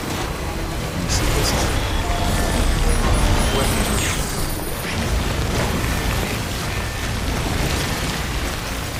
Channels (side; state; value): both; identical; correlation 1.00